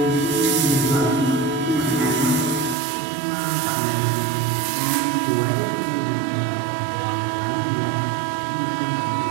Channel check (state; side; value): drops out; left; at 2.8 s